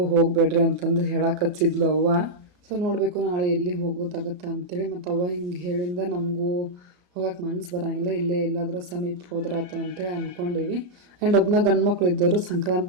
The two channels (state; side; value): late; left; 34 ms